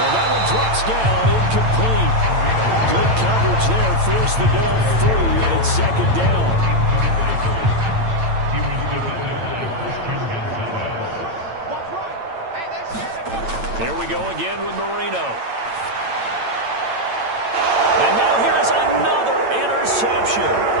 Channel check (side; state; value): left; late; 8.9 ms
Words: that one drops down, incomplete. Good coverage there, forced the ball free, and it's 2nd down. Here we go again with Marino. And now here's another interception.